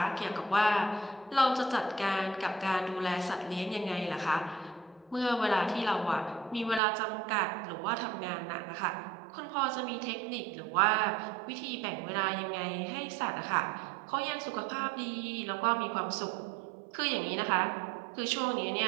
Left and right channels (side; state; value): left; drops out; at 6.8 s